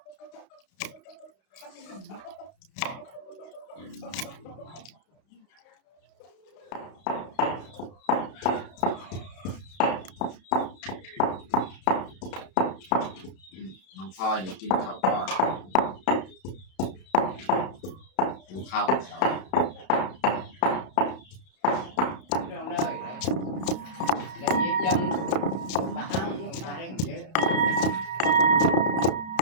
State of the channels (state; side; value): late; right; 32 ms